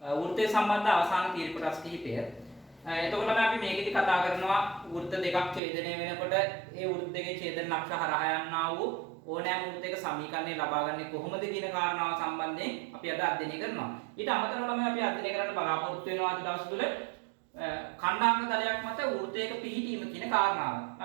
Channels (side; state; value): left; drops out; at 5.6 s